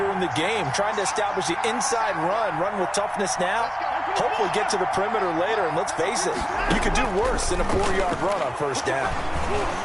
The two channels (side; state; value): both; identical; correlation 1.00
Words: in the game, trying to establish the inside run with toughness now, hopefully get to the perimeter later, and let's face it, you could do worse than a 4-yard run on first down.